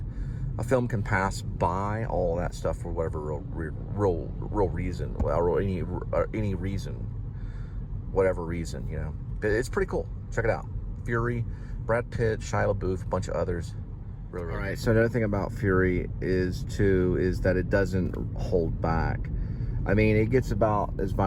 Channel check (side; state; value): both; identical; correlation 1.00